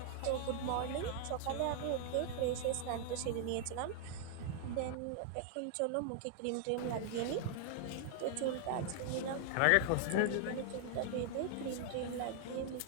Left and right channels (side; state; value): both; different; correlation 0.00